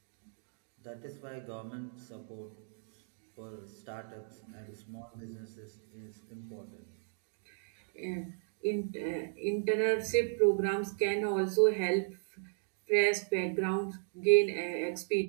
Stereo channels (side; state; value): left; silent; digital silence